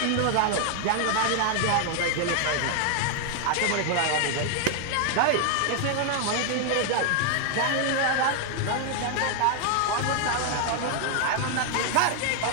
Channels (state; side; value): different; both; correlation 0.00